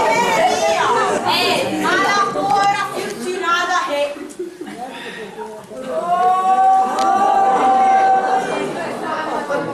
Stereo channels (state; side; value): identical; both; correlation 1.00